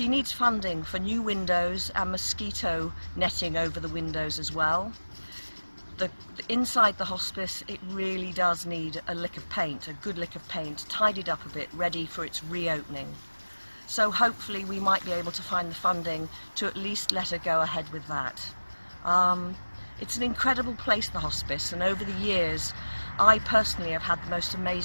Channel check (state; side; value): inverted; both; correlation -1.00